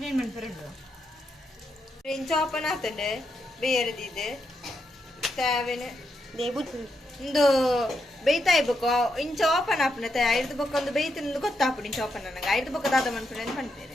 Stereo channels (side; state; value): both; normal; correlation 0.82